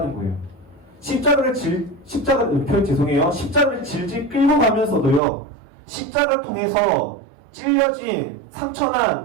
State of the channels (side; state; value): left; drops out; at 5.2 s